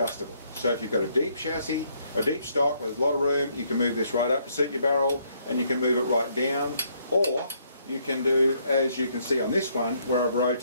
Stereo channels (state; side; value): inverted; both; correlation -0.70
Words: So if you've got a deep chassis, a deep stock with a lot of room, you can move this right up to suit your barrel, and you can move it right down, or you can do, as you can see on this one, where I've